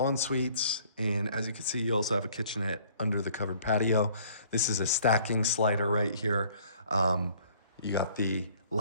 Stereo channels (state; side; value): inverted; both; correlation -0.57